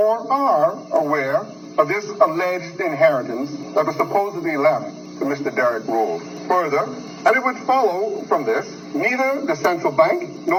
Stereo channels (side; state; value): both; identical; correlation 1.00